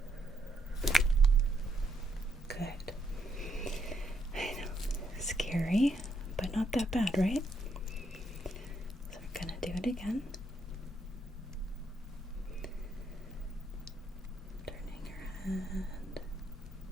Good. I know, scary, but not that bad, right? So we're gonna do it again. Turning your head.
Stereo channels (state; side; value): normal; both; correlation 0.76